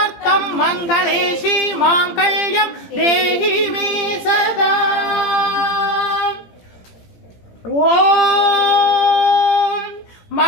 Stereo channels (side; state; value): right; late; 18 ms